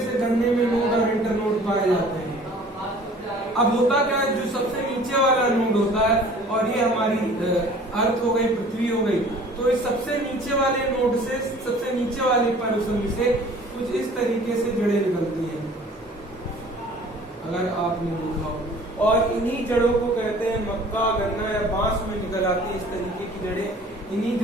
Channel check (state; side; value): normal; both; correlation 0.49